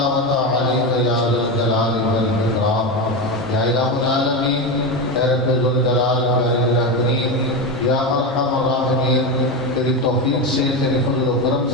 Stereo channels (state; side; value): normal; both; correlation 0.16